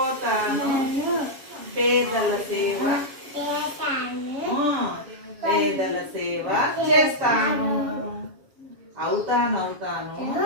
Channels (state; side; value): late; left; 7.3 ms